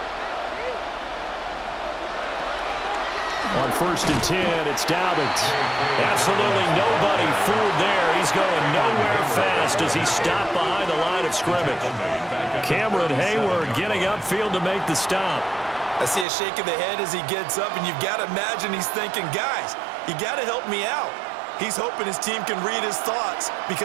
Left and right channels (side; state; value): left; drops out; at 16.2 s